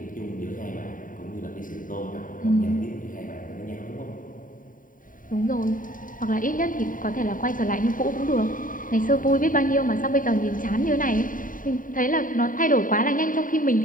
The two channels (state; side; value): late; right; 0.39 ms